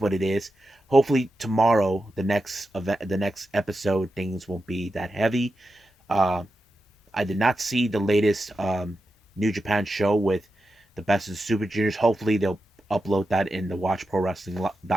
what it is. Hopefully tomorrow, the next event, the next episode, things won't be that heavy. Uh, I did not see the latest New Japan show with the Best of the Super Juniors. Hopefully they'll upload that in the Watch Pro Wrestling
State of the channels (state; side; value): normal; both; correlation 0.90